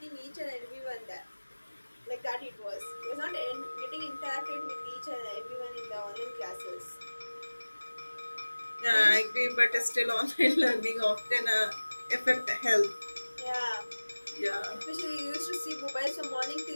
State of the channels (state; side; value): inverted; both; correlation -1.00